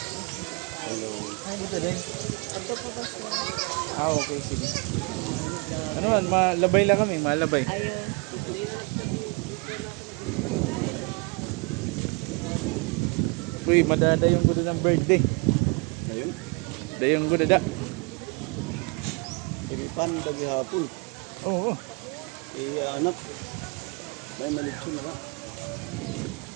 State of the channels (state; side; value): quieter; left; 31.5 dB